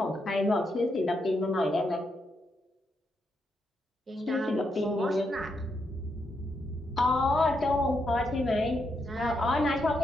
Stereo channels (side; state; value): both; normal; correlation 0.81